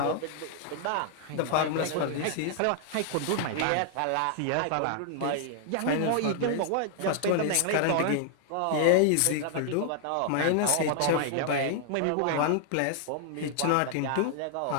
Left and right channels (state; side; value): different; both; correlation 0.00